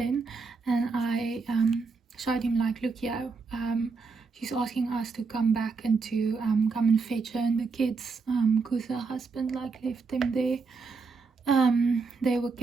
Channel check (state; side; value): quieter; left; 4.6 dB